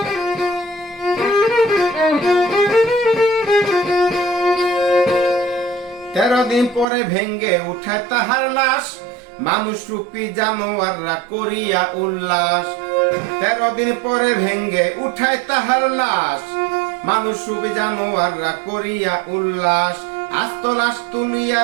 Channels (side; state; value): left; drops out; at 6.9 s